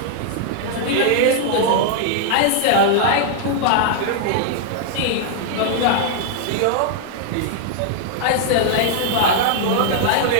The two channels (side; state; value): both; different; correlation -0.01